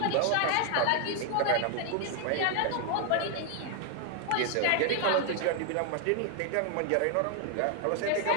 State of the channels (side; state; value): both; different; correlation 0.00